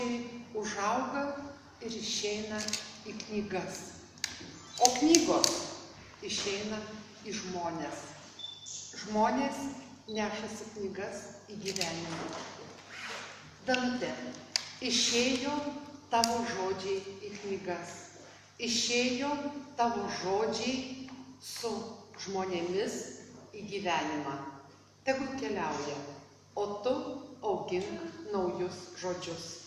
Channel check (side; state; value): both; identical; correlation 1.00